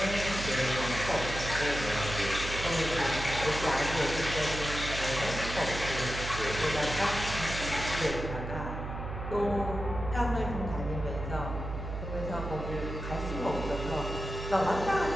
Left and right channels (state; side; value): noise; right; hum, 6 dB below the sound